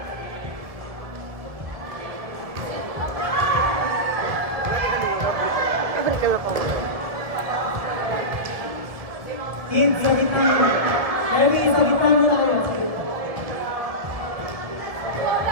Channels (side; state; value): left; late; 1.7 ms